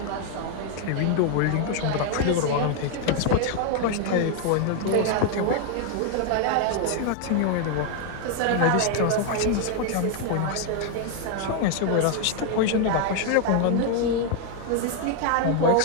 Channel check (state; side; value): different; both; correlation 0.00